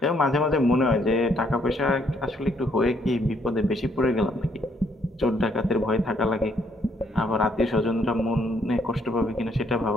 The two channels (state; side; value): normal; both; correlation 0.69